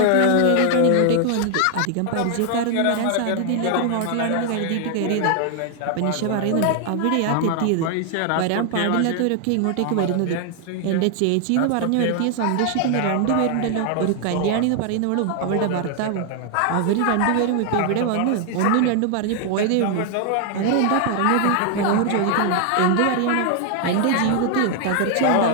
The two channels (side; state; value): both; different; correlation 0.00